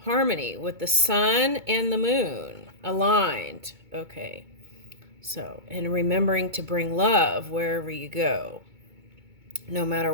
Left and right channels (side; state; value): left; late; 2.2 ms